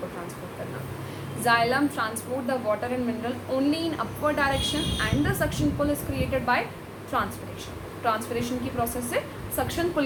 को ट्रांसपोर्ट करना। Xylem transport the water and mineral only in upward direction and the suction pull is created by transpiration. Transpiration की प्रोसेस से सक्शन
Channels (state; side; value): identical; both; correlation 1.00